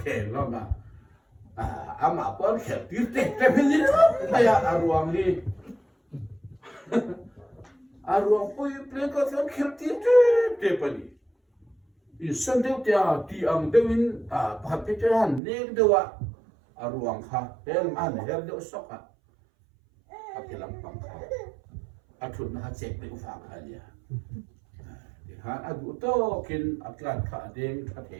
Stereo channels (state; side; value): drops out; left; at 15.4 s